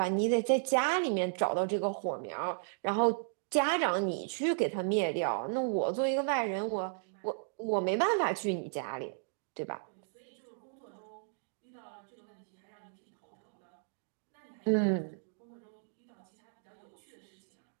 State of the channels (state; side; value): silent; left; digital silence